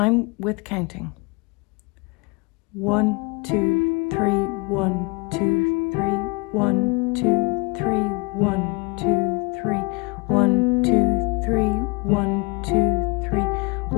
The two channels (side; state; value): right; quieter; 28.6 dB